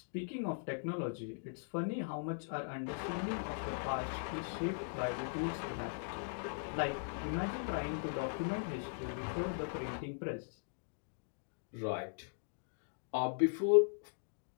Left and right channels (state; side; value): silent; right; digital silence